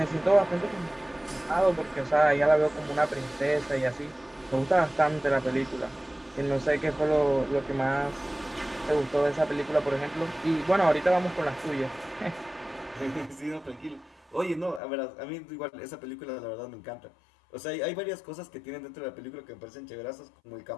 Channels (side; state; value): right; drops out; at 14.8 s